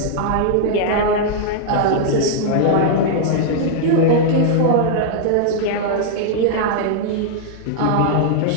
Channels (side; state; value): both; different; correlation -0.01